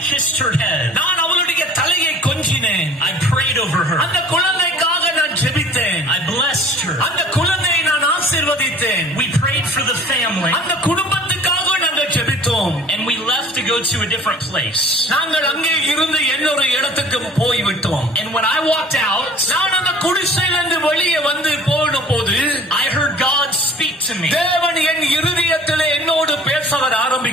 kissed her head. நான் அவளுடைய தலையை கொஞ்சினேன். I prayed over her. அந்த குழந்தைக்காக நான் ஜெபித்தேன். I blessed her. அந்த குழந்தையை நான் ஆசீர்வதித்தேன். We prayed for the family. அந்த குடும்பத்துக்காக நாங்கள் ஜெபித்தோம். And we left to go to a different place. நாங்கள் அங்கே இருந்து இன்னொரு இடத்துக்கு போய்விட்டோம். And when I walked out, நான் அந்த குடிசையிலிருந்து வெளியே வந்து போன போது I heard God speak to me. தேவன் என் இருதயத்திலே என்னோடு பேச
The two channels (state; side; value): normal; both; correlation 0.48